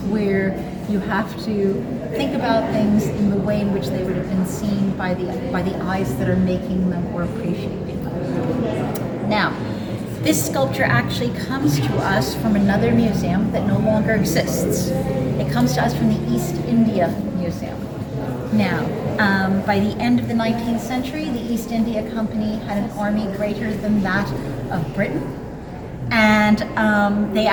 where you have to think about things in the way in which they would have been seen by the eyes that are making them or appreciating them. Now, this sculpture actually comes to us from another museum that no longer exists. It comes to us from the East India Museum. Now, by the end of the 19th century, the East India Company had an army greater than that of Britain, and they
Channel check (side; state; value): both; identical; correlation 1.00